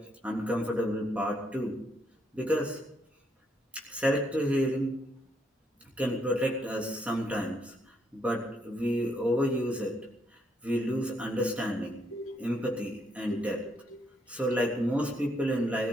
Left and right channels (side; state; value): both; normal; correlation 0.74